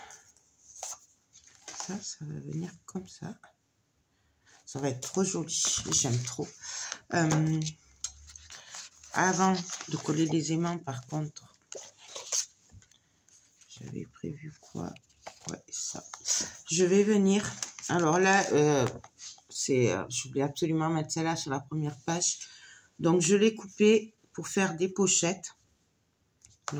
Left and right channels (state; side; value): identical; both; correlation 1.00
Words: ça va venir comme ça. Ça va être trop joli. J'aime trop. Avant de coller les aimants, par contre, j'avais prévu quoi? Ouais, ça. Je vais venir. Alors là, je voulais absolument mettre celle-là sur la première page. Donc, je l'ai coupé pour faire des pochettes.